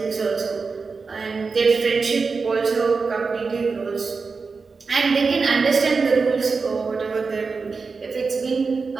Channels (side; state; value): left; quieter; 4.6 dB